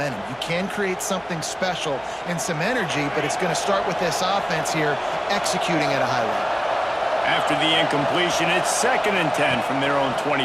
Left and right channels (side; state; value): both; identical; correlation 1.00